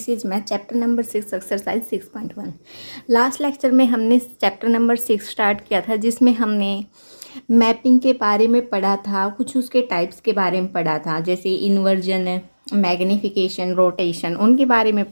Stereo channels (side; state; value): both; inverted; correlation -1.00